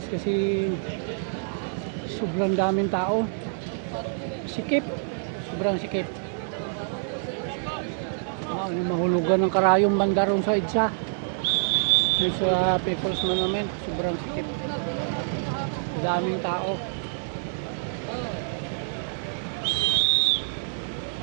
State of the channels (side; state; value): left; silent; digital silence